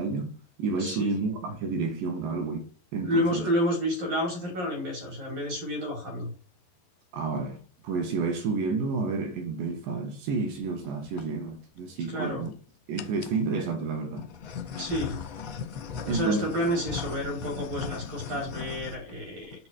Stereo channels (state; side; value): late; left; 11 ms